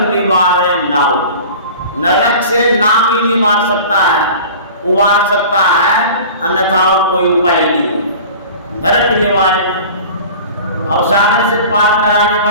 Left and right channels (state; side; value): inverted; both; correlation -0.40